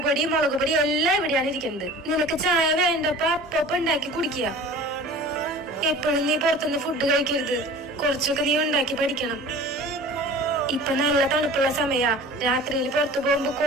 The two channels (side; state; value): both; normal; correlation 0.42